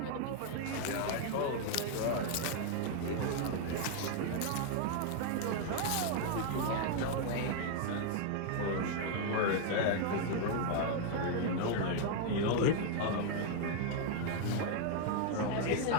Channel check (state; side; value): different; both; correlation 0.00